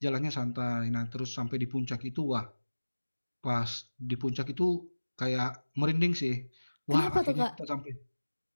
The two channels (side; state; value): both; inverted; correlation -1.00